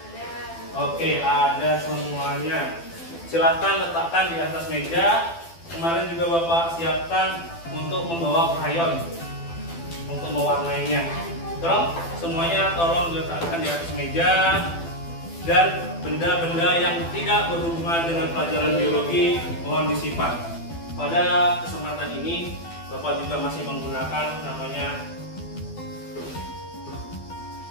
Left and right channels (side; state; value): right; late; 12 ms